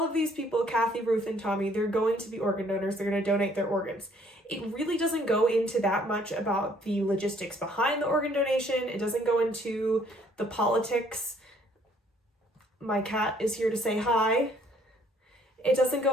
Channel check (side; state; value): both; normal; correlation 0.62